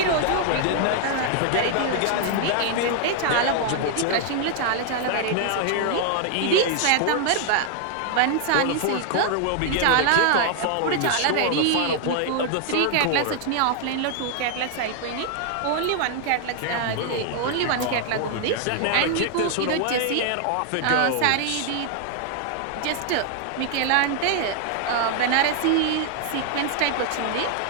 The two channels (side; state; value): both; different; correlation 0.00